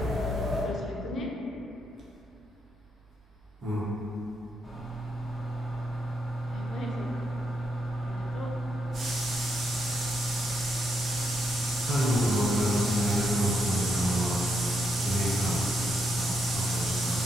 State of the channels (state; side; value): normal; both; correlation 0.80